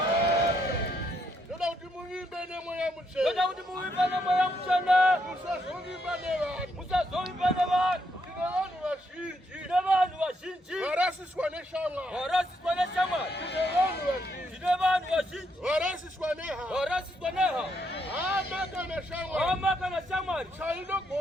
Ndoda utimuimbe ne moya mchana. Ndoda utimuimbe ne moya mchana. Musazovimba ne vanhu. Musazovimba ne vanhu. Tine vanhu vazhinji. Tine vanhu vazhinji. Varasiswa neshamwari. Varasiswa neshamwari. Tine vanhu vazhinji. Tine vanhu vazhinji. Varasiswa nehama. Varasiswa nehama. Hama kana shamwari. Hama kana shamwari.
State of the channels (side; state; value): both; normal; correlation 0.76